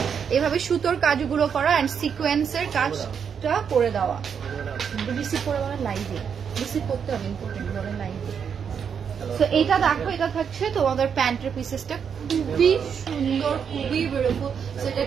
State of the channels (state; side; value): quieter; left; 7.2 dB